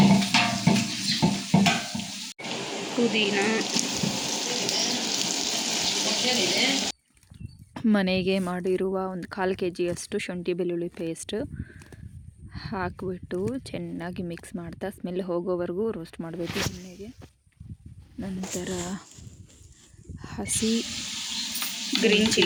ಪುದೀನ, ಮನೆಗೆ ಮಾಡಿರುವ ಒಂದು 1/4 kg ಶುಂಠಿ ಬೆಳ್ಳುಳ್ಳಿ ಪೇಸ್ಟ್ ಹಾಕಿಬಿಟ್ಟು ಚೆನ್ನಾಗಿ ಮಿಕ್ಸ್ ಮಾಡ್ತಾ ಸ್ಮೆಲ್ ಹೋಗೋವರೆಗೂ ರೋಸ್ಟ್ ಮಾಡಬೇಕು ಎಣ್ಣೆಗೆ. ನಂತರ ಹಸಿ ಗ್ರೀನ್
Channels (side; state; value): both; identical; correlation 1.00